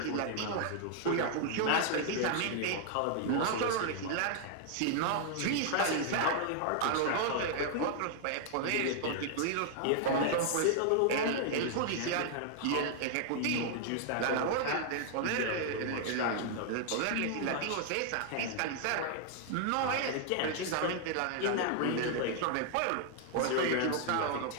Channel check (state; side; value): different; both; correlation 0.00